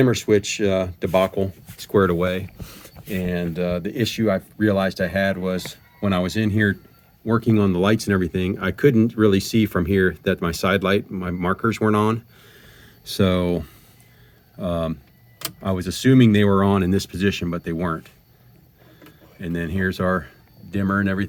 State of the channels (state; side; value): identical; both; correlation 1.00